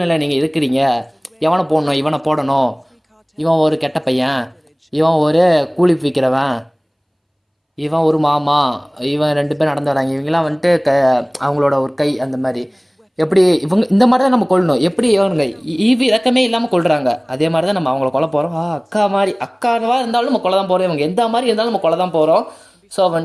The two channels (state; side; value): identical; both; correlation 1.00